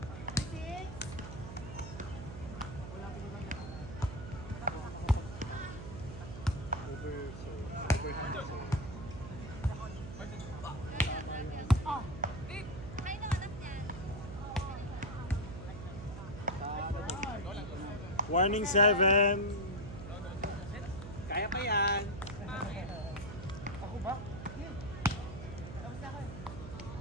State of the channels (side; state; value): right; noise; hum, 10 dB below the sound